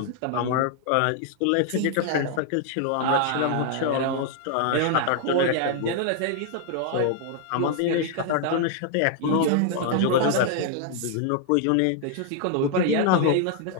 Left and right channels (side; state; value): both; different; correlation 0.00